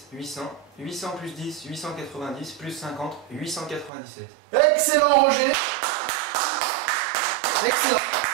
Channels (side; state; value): left; drops out; at 3.9 s